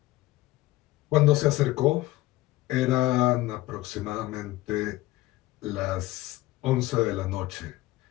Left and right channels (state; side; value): quieter; right; 18.0 dB